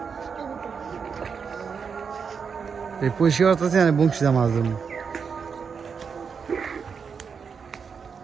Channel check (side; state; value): left; quieter; 6.1 dB